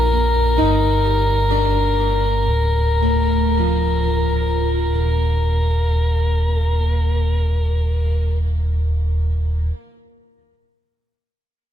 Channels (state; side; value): normal; both; correlation 0.82